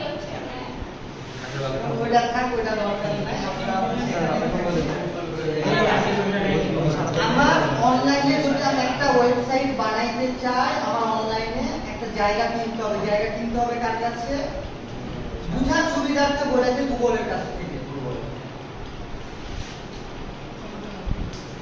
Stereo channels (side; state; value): both; identical; correlation 1.00